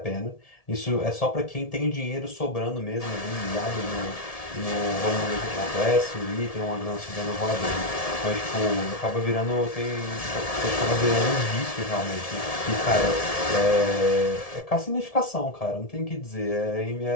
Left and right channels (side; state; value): right; late; 1.7 ms